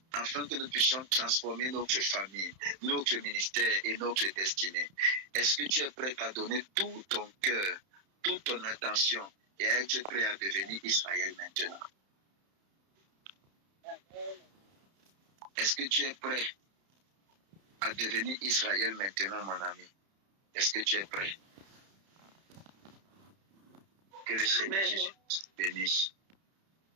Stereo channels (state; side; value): late; left; 31 ms